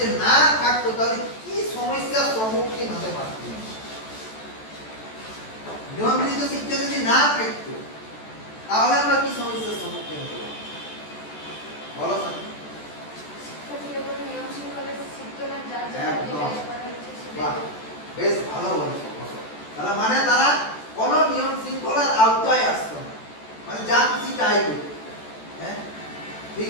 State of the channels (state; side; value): late; right; 14 ms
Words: না থাকতো তাহলে কি সমস্যার সম্মুখীন হতে পারতাম? নিয়ন্ত্রিত শিক্ষা যদি না থাকতো তাহলে আমরা কি সমস্যার সম্মুখীন হতে পারতাম বলো? শিক্ষার্থীরা কোনো নিয়ম শৃঙ্খলা শিখতো না, যার হ্যাঁ ঠিক